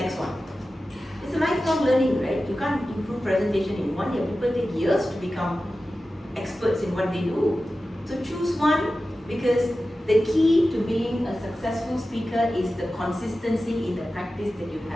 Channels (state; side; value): normal; both; correlation 0.94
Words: one. It's a lifelong learning, right? You can't improve presentation in 1 year. People take years to become experts in what they do. So choose one, because the key to being a successful speaker is the consistency in the practice that you